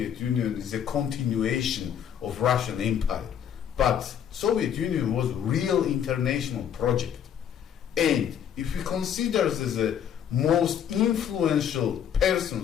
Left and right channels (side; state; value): right; quieter; 9.0 dB